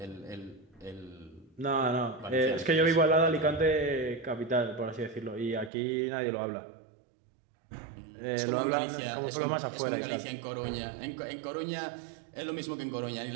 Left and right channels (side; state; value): left; drops out; at 5.7 s